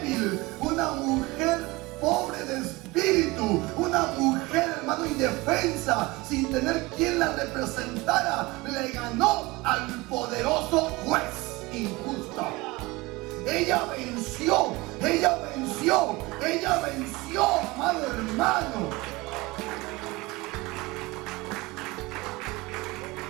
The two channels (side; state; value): left; quieter; 22.3 dB